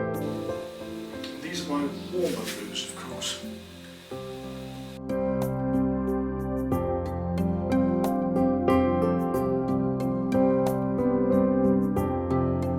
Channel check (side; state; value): both; identical; correlation 1.00